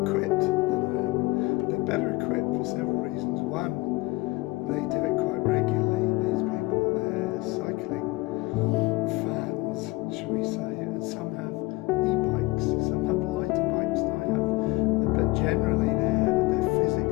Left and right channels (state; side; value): quieter; right; 22.3 dB